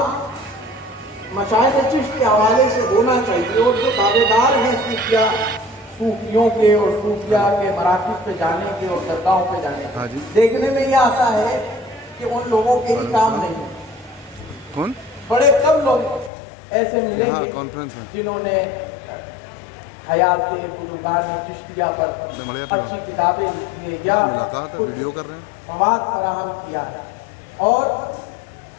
مشائخ چشت کے حوالے سے ہونا چاہیے اور جو دعوے دار ہیں صوفیوں کے اور صوفیہ کے مراکز پہ جانے کے اور درگاہوں پہ جانے کے، دیکھنے میں یہ آتا ہے کہ ان لوگوں کے ہی کام نہیں ہے۔ بڑے کم لوگ ایسے ملیں گے جنہوں نے حیات بزرگان چشتیہ پر اچھی کتابیں لکھی ہیں یا مواد فراہم کیا ہے۔ اور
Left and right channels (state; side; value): drops out; right; at 16.3 s